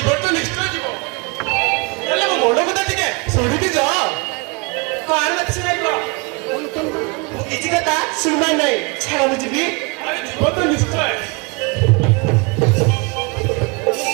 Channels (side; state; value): left; quieter; 29.7 dB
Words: তো নিশ্চয় জীব বলে মো মন কথা টিকে শুনিবি যা কার মত শুনাইব কিছু কথা শুনবার নাই ছাড়া বুঝবি আরে জীবন তো নিশ্চয়